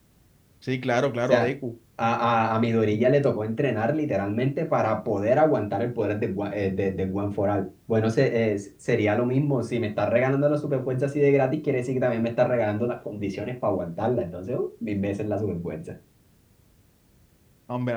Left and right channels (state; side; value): identical; both; correlation 1.00